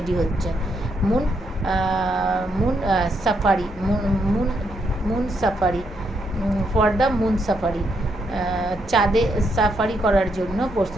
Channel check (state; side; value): normal; both; correlation 0.77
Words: হচ্ছে। Moon safari for the moon safari. চাঁদে সাফারি করার জন্য